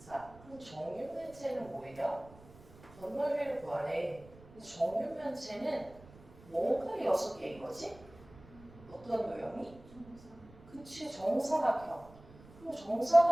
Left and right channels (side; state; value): right; noise; rumble, 21 dB below the sound